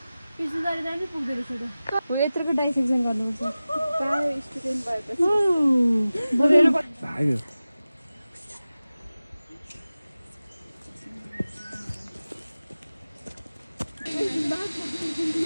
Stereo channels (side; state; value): both; inverted; correlation -0.96